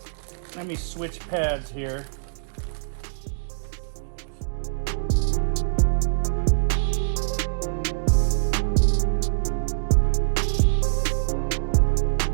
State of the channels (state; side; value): silent; left; digital silence